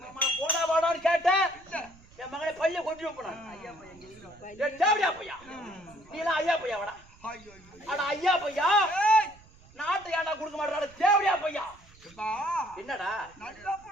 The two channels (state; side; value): noise; right; rumble, 25 dB below the sound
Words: போடா வாடான்னு கேட்டேன். என் மகனை பையன் கொண்டு போனான். பையா நீ எல்லாம் ஐயா பையா வாடா. ஆனா ஐயா பையா நாட்டை ஏடா கொடுக்க மாட்டாடா. தேவடியா பையா என்னடா? நல்ல